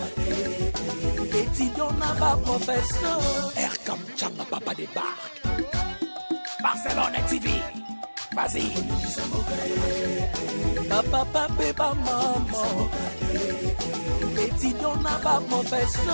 Étudiant n'a pas professeur. Erkam Chamba, papa débarque. Barcelone TV. Vas-y. Papa, papa, maman. Étudiant n'a pas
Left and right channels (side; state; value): both; inverted; correlation -1.00